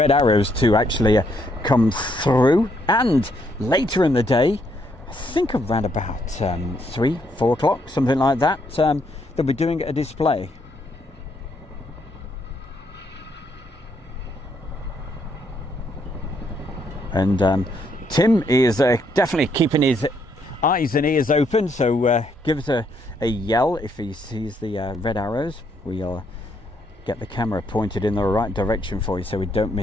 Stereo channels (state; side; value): normal; both; correlation 0.73